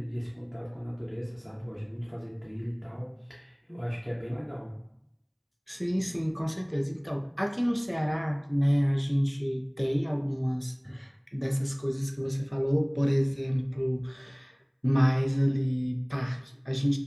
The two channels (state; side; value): identical; both; correlation 1.00